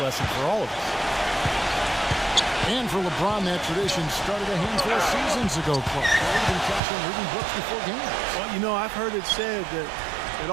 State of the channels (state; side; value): drops out; left; at 6.8 s